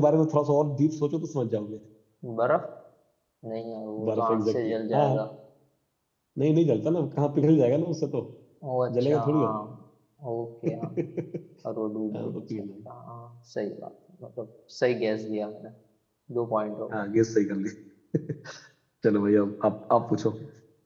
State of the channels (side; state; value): both; identical; correlation 1.00